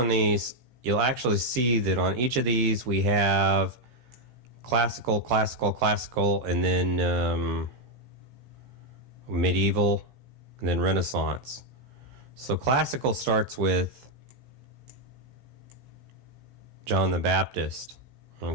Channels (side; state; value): left; late; 16 ms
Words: these, you'll actually see that on each of these we have classical, classical, classical, and then medieval, and then Renaissance. So classical starts with John the Baptist,